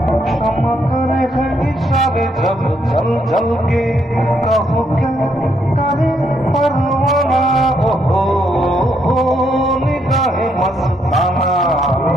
क्षमा करे है हिसाब जब जल जल के कहो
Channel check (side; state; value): both; normal; correlation 0.74